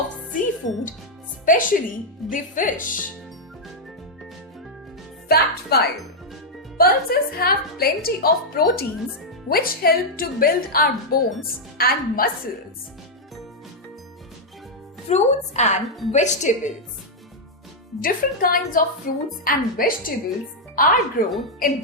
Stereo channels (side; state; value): both; normal; correlation -0.03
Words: seafood, especially the fish. Fact 5. Pulses have plenty of proteins which help to build our bones and muscles. Fruits and vegetables. Different kinds of fruits and vegetables are grown in